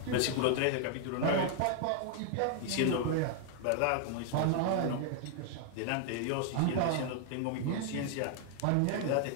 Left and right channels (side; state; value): both; different; correlation 0.00